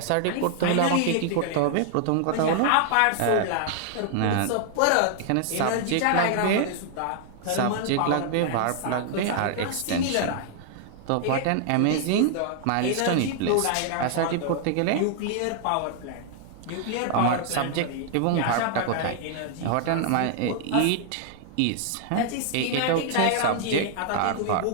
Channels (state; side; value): different; both; correlation -0.01